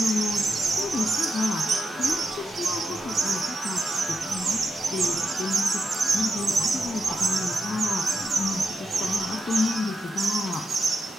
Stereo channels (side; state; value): both; normal; correlation 0.85